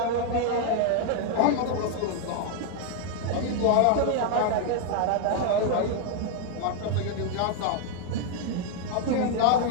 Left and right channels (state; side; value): different; both; correlation 0.00